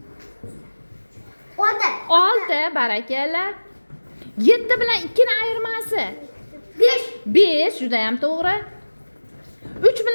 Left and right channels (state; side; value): inverted; both; correlation -1.00